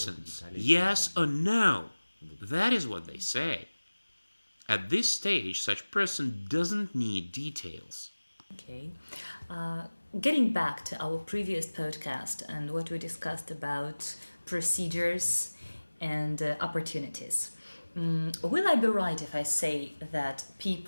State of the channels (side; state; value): both; inverted; correlation -1.00